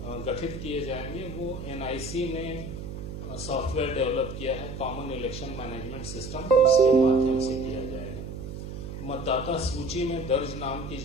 गठित किए जाएंगे वो एनआईसी ने सॉफ्टवेयर डेवलप किया है, कॉमन इलेक्शन मैनेजमेंट सिस्टम, उसके माध्यम से किया जाएगा। मतदाता सूची में दर्ज नाम की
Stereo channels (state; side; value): noise; right; hum, 8 dB below the sound